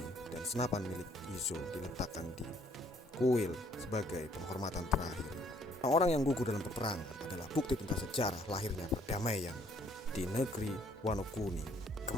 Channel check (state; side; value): normal; both; correlation 0.64